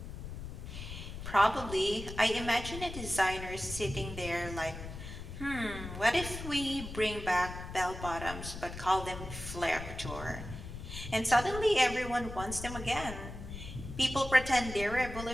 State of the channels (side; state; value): left; noise; rumble, 9 dB below the sound